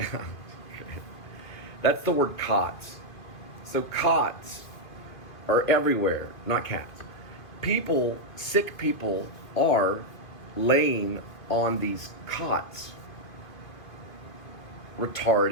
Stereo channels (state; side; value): late; right; 2.5 ms